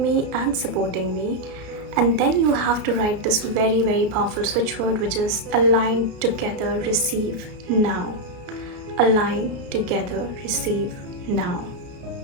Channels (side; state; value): left; late; 33 ms